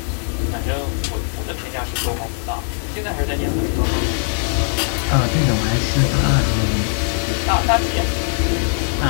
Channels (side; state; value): right; silent; 66 dB below the other